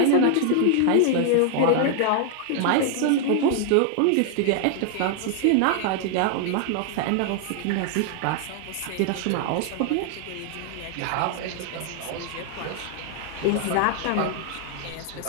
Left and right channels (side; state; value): both; different; correlation 0.00